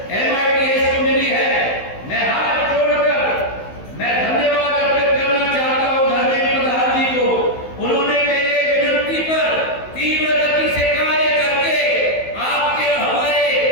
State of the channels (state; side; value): late; right; 16 ms